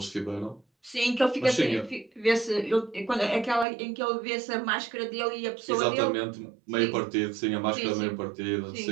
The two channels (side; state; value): left; drops out; at 3.7 s